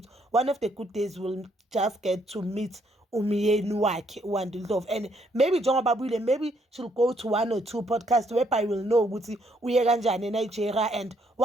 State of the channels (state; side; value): normal; both; correlation 0.70